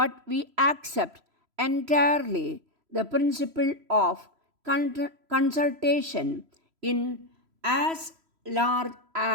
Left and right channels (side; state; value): left; late; 3.0 ms